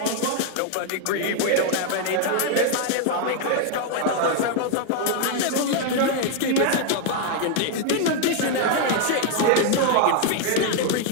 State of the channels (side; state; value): both; different; correlation 0.00